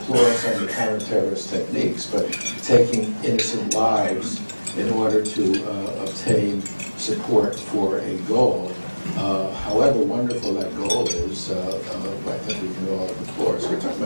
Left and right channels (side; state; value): both; inverted; correlation -1.00